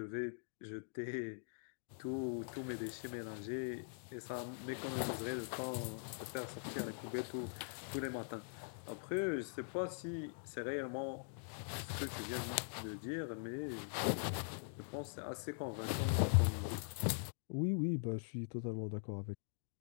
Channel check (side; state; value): right; silent; digital silence